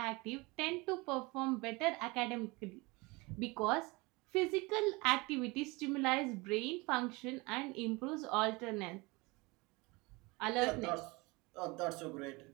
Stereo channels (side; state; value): left; quieter; 25.0 dB